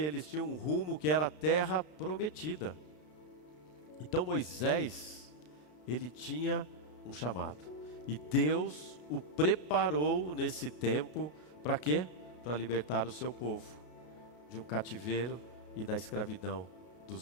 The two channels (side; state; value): right; late; 33 ms